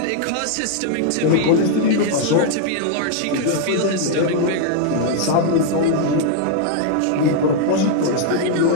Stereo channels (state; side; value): different; both; correlation 0.00